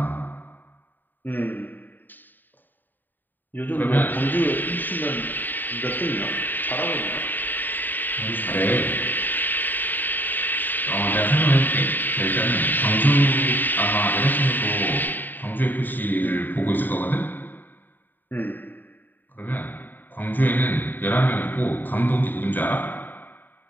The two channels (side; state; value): right; late; 0.090 ms